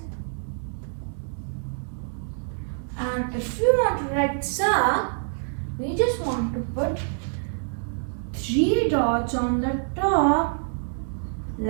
And if we want to write sa, we just want to put 3 dots on the top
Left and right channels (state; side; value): silent; left; digital silence